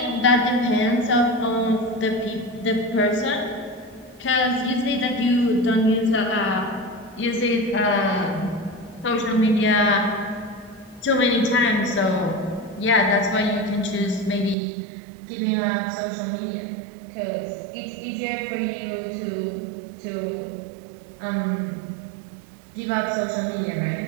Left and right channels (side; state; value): left; drops out; at 14.6 s